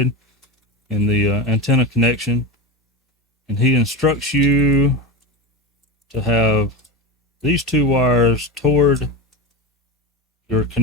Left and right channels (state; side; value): normal; both; correlation 0.21